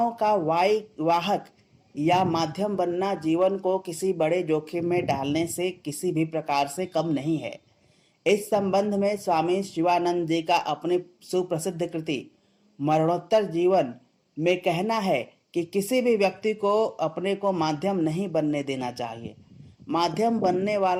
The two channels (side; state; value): both; identical; correlation 1.00